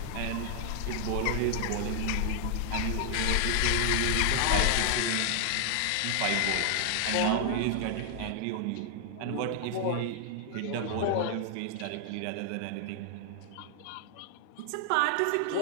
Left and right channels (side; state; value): both; different; correlation 0.00